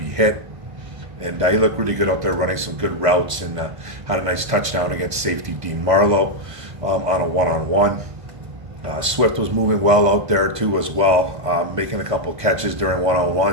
hit. And he looked really good out there running some good routes and had a nice touchdown against safety Dean Marlowe on a one-on-one. Swift was moving well out there too as well, making a couple catches during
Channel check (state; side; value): late; left; 1.5 ms